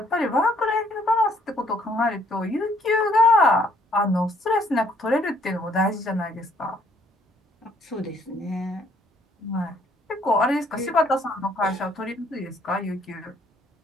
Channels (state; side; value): normal; both; correlation 0.65